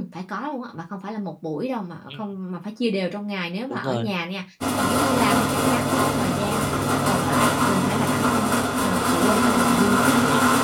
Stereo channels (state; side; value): identical; both; correlation 1.00